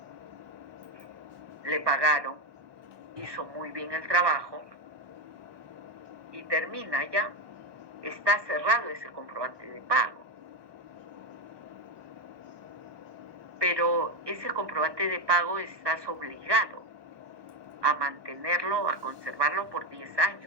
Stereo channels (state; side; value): late; left; 1.2 ms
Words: le pagaron, hizo muy bien el trabajo y termina ya, está cerrado ese comprobante de pago. Pero ese comprobante de pago estás obligado a mantenerlo, a conservarlo por 10